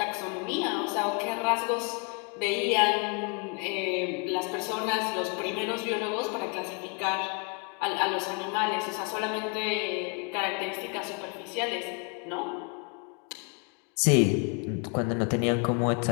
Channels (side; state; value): right; quieter; 34.4 dB